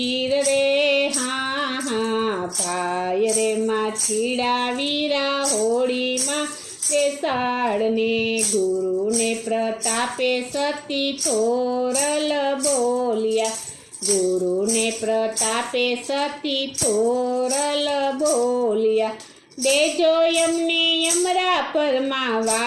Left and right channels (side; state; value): both; identical; correlation 1.00